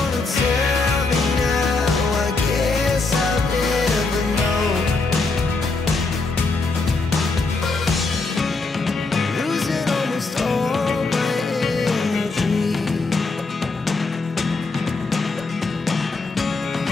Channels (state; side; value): quieter; right; 3.7 dB